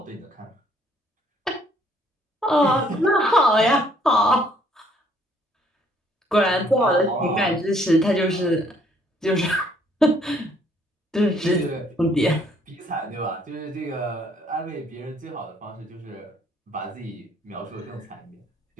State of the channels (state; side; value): normal; both; correlation 0.64